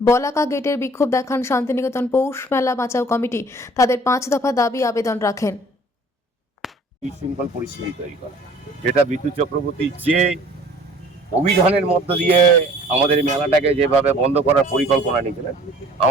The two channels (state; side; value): normal; both; correlation 0.52